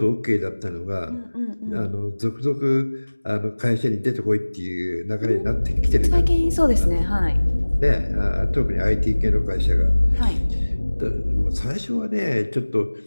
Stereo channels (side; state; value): both; inverted; correlation -1.00